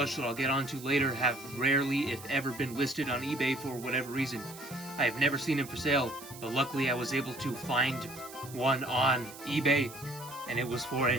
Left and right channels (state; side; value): noise; right; hiss, 16 dB below the sound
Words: that I'll get onto later have rarely, if ever, been listed on eBay for whatever reason. I have never seen them for sale, but luckily I was able to find one on eBay, and it was for